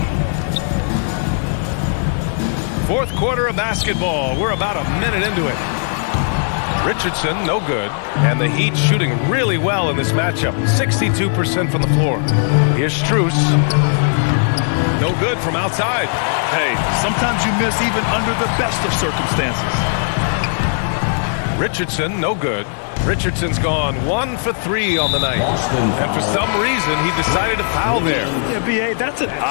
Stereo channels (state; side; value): silent; right; digital silence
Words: Fourth quarter of basketball. We're about a minute into it. Richardson, no good. And the Heat shooting really well in this matchup. 62% from the floor. Here's Strus. No good from outside. Hey, sometimes you miss even under the best of circumstances. Richardson, no good. Richardson's gone 1 for 3 on the night. And for some reason, he decided to foul there. Yeah, B.A., that's an